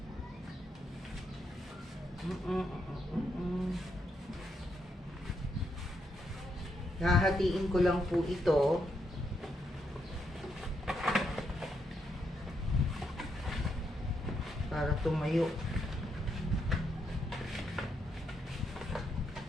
Hahatiin ko lang po ito. Para tumayo.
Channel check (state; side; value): normal; both; correlation 0.79